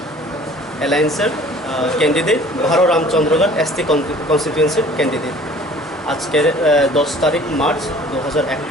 Alliance candidate Bharo Ramchandraghat SD Constituency candidate আজকে 10 তারিখ March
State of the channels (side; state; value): both; normal; correlation 0.50